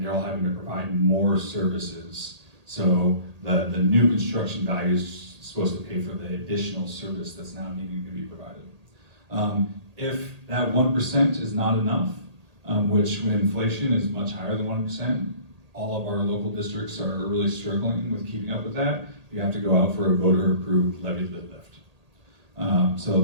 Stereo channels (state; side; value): late; left; 1.8 ms